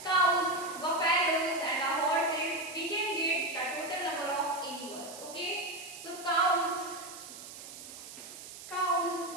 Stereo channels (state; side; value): noise; right; hiss, 13 dB below the sound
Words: cows, buffaloes and the horses, we can get the total number of animals. Okay. So cows